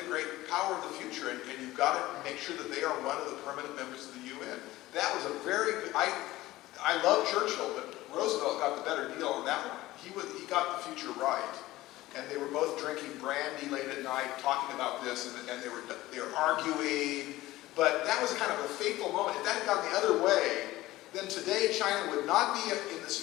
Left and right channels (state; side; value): quieter; right; 17.2 dB